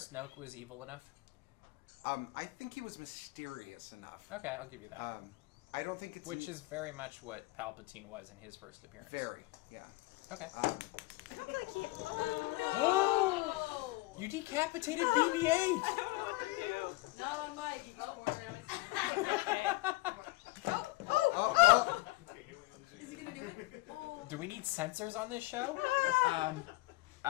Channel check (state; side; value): quieter; right; 21.5 dB